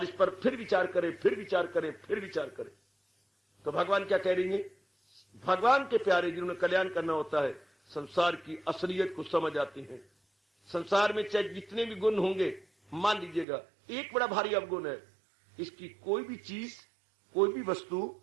इस पर फिर विचार करें, फिर विचार करें, फिर विचार करें। तो भगवान क्या कह रही है? भगवान के प्यारे जिन्होंने कल्याण करना होता है, संसार की असलियत को समझ आती है। संसार में चाहे जितने भी गुण होंगे, मान लीजिएगा एक बड़ा भारी अवगुण है, इसकी कोई भी चीज, कोई भी वस्तु,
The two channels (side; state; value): left; drops out; at 13.5 s